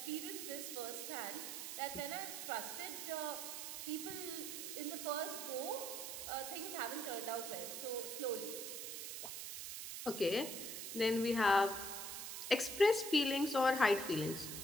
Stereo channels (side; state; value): right; noise; hiss, 6 dB below the sound